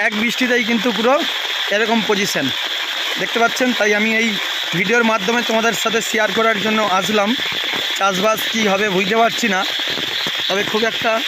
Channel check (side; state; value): both; identical; correlation 1.00